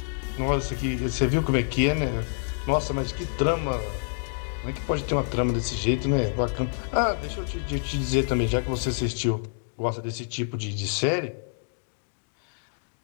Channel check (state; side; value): silent; right; digital silence